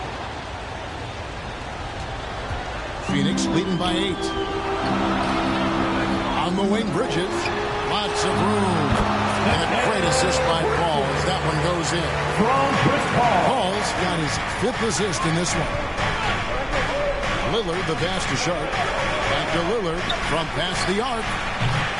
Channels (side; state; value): both; identical; correlation 1.00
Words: Phoenix leading by 8. On the wing, Bridges. Lots of room. And a great assist by Paul as that one goes in. Paul's got his 5th assist in this one. Lillard, the pass to Sharp. Back to Lillard from past the arc.